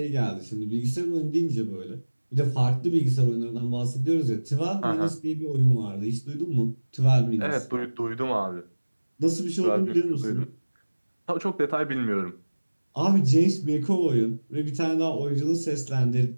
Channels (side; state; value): both; inverted; correlation -1.00